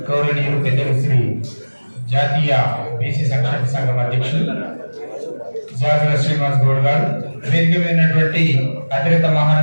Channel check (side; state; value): both; inverted; correlation -1.00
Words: గౌరవనీయులు పెద్దలు శ్రీ జాతీయ బీసీ సంక్షేమ సంఘం అధ్యక్షులు జాజుల శ్రీనివాస్ గౌడ్ గారు, వేదిక మీదటువంటి అతిరత